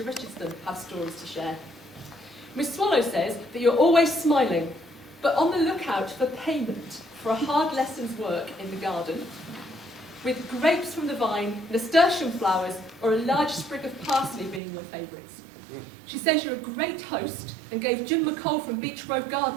Richardson have stories to share. Miss Swallow says that you're always smiling, but on the lookout for payment for a hard lesson's work in the garden, with grapes from the vine, nasturtium flowers, or a large sprig of parsley being your favourites. She says you're a great host and gave Jim McCall from Beach Grove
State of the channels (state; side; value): drops out; left; at 14.6 s